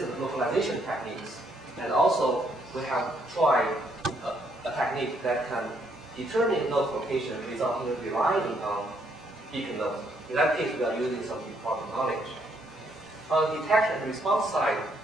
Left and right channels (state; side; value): normal; both; correlation 0.72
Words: localization techniques, and also we have tried a technique that can determine node location without even relying on beacon nodes. In that case, we are using some important knowledge. On the detection and response side,